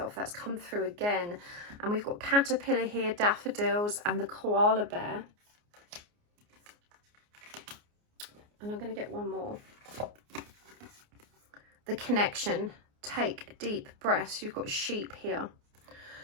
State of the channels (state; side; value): late; left; 29 ms